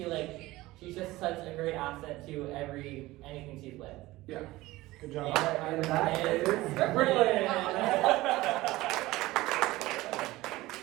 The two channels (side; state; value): left; quieter; 18.5 dB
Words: she's just such a great asset to anything she's with. Yeah. Good job. And that is Brilliant. All